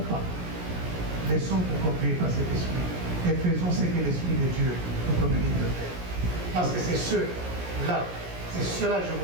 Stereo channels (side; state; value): left; late; 17 ms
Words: pas. Laissons-nous conduire par cet esprit et faisons ce que l'Esprit de Dieu nous communique de faire. Parce que c'est cela, je